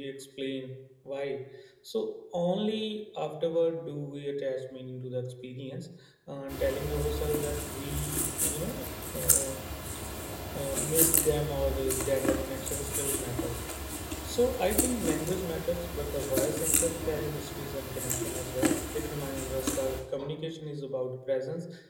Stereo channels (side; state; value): both; identical; correlation 1.00